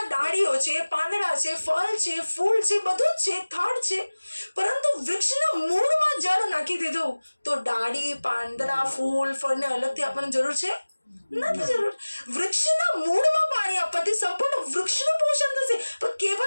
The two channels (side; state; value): both; inverted; correlation -1.00